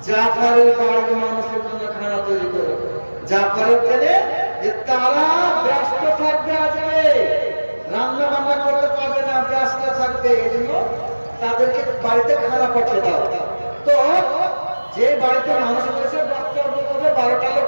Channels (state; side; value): inverted; both; correlation -1.00